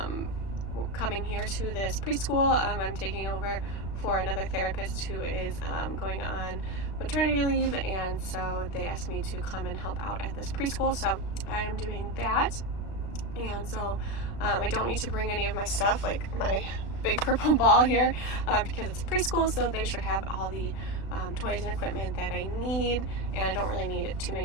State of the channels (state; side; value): late; right; 36 ms